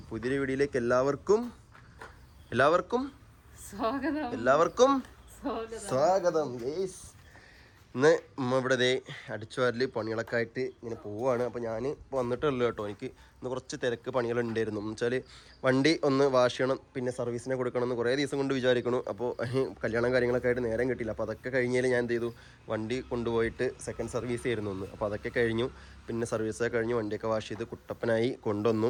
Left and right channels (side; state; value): both; identical; correlation 1.00